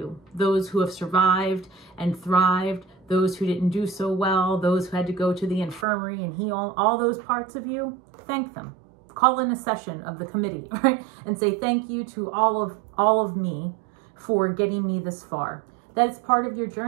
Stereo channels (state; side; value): drops out; left; at 5.9 s